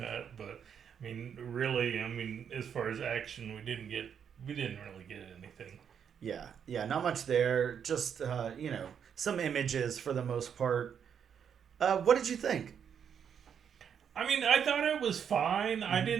But really, as far as action, we didn't really get anything. Yeah, not much there. Just some images for the most part. What did you think? I thought it was fine. I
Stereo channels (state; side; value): quieter; left; 7.8 dB